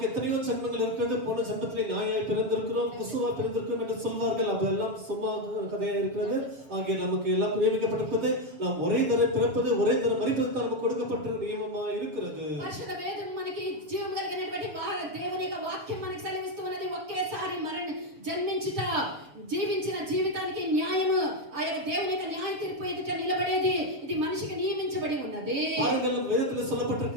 எத்தனையோ ஜென்மங்கள் இருக்கிறது, போன ஜென்மத்திலே நாயாய் பிறந்திருக்கிறோம், குசுவா பிறந்திருக்கிறோம் என்று சொல்வார்கள். அதெல்லாம் சும்மா கதையா இருக்கிறது. ஆகிய நமக்கு எல்லாம் நியமிக்கப்பட்டிருக்கிறது. நாம் ஒரே தரம் பிறப்பது, ஒரே தரம் மரிப்பது தான் நமக்கு கொடுக்கப்பட்ட நியமமா இருக்கிறது. పరిశుద్ధ వేదం మనకి జీవం కలిగినటువంటి దేవుని యొక్క వాక్యం మనకి సెలవిస్తూ ఉన్నది. ఒకేసారి జన్మించుట, జీవించిన జీవితానికి న్యాయము, ఆ యొక్క దేవుని యొక్క న్యాయ తీర్పు ఎదుట నిలబడేది ఇది మనిషికి నియమించబడి ఉన్నది. பாருங்கள், வேதத்தில்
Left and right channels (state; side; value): late; left; 6.9 ms